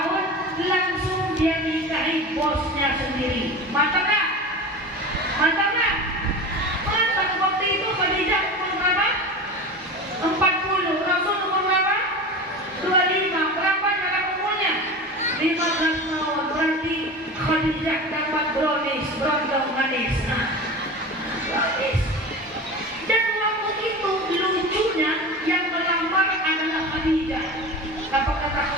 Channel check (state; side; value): normal; both; correlation 0.30